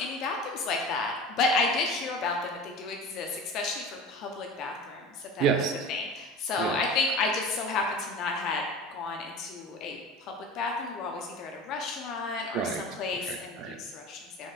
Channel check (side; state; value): both; normal; correlation 0.35